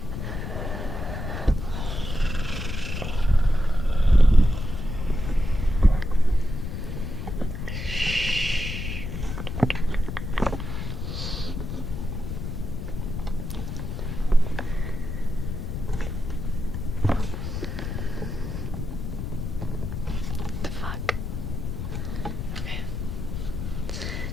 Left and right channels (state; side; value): noise; left; rumble, 4 dB below the sound